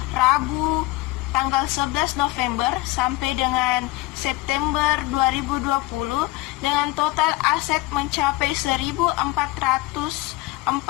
Rabu tanggal 11 November sampai dengan September 2020 dengan total aset mencapai 1.447,85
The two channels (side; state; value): right; quieter; 19.4 dB